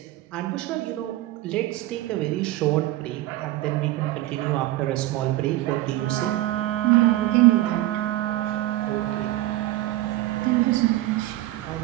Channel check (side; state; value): left; quieter; 16.3 dB